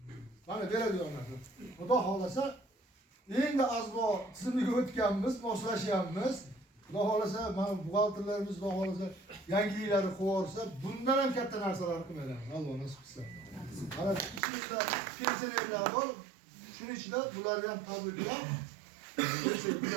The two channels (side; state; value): left; drops out; at 14.4 s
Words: Mana beradigan narsa. Xudo xolasa endi azbo tizimiga o'tganmiz, moslashyapmiz. Xudo xolasa mana buxgalterlarimiz Xudo xolasa yangiliklarni qo'yarsa, bundan ham katta narsalarni qilmaymiz. Alloh nasib qilsa. Mana ichimizda pensionerlar bor. Shuning ichida bularni ham tabriklab